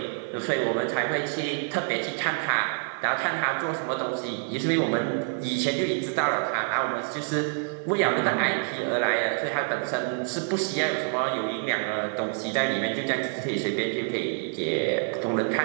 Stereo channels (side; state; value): left; silent; 60 dB below the other